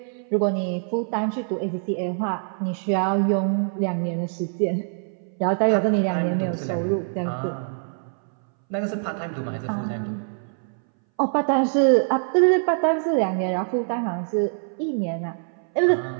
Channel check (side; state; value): left; silent; 61 dB below the other